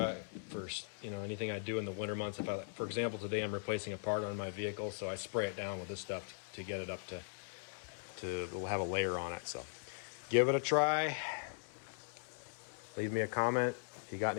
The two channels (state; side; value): silent; right; digital silence